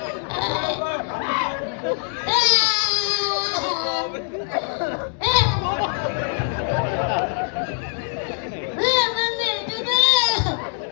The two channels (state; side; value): silent; right; 59 dB below the other